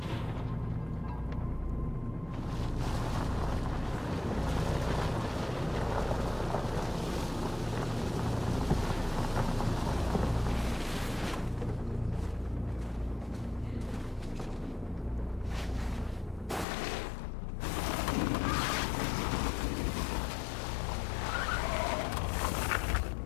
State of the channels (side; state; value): right; drops out; at 16.7 s